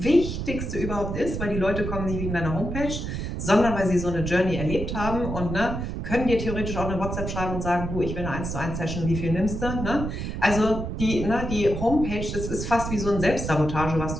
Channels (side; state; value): right; noise; rumble, 4 dB below the sound